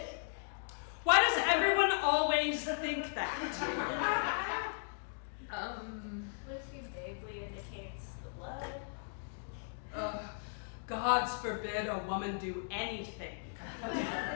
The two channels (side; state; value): right; silent; digital silence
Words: Why does everyone always think that? Lucy vaguely indicates the blood. Gods forbid a woman do anything.